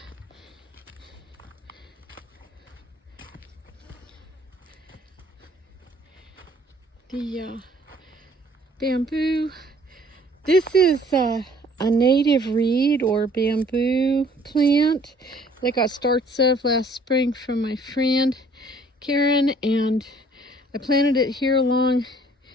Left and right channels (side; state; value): both; normal; correlation 0.58